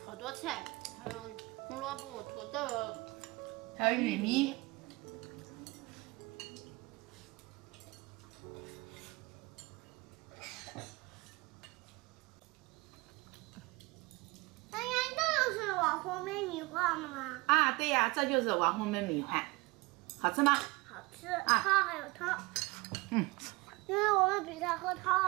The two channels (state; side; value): quieter; left; 24.5 dB